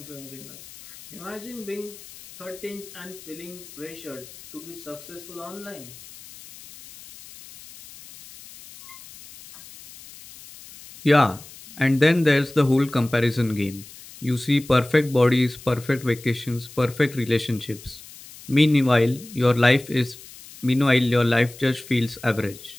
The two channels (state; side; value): noise; left; hiss, 18 dB below the sound